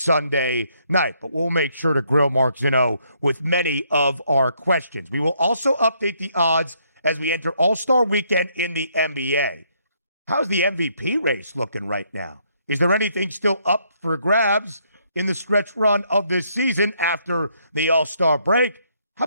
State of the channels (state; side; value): inverted; both; correlation -0.71